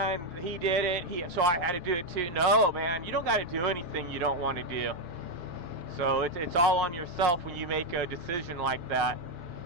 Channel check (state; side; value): late; left; 5.5 ms